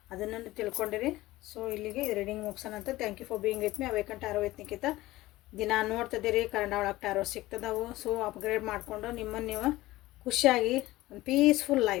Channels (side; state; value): right; quieter; 17.7 dB